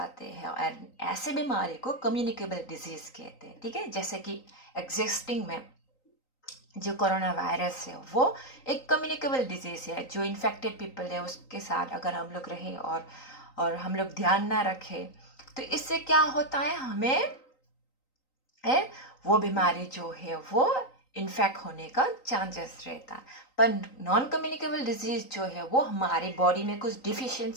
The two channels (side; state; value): right; late; 3.9 ms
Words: हैं, और ऐसे बीमारी को कम्युनिकेबल डिजीज कहते हैं, ठीक है। जैसे कि एग्जिस्टिंग में जो कोरोना वायरस है वो एक कम्युनिकेबल डिजीज है, जो इन्फेक्टेड पीपल है उसके साथ अगर हम लोग रहें और हम लोग ध्यान ना रखें तो इससे क्या होता है, हमें वो बीमारी जो है वो इन्फेक्ट होने का चांसेस रहता है। पर नॉन कम्युनिकेबल डिजीज जो है वो हमारी बॉडी में कुछ